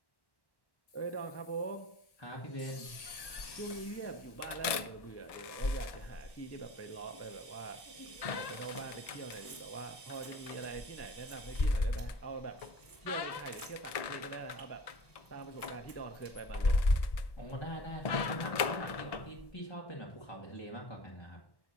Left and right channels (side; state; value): right; late; 1.1 ms